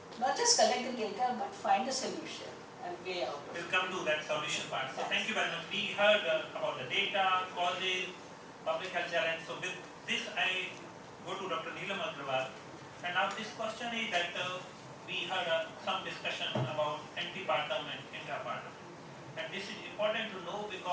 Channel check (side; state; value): both; identical; correlation 1.00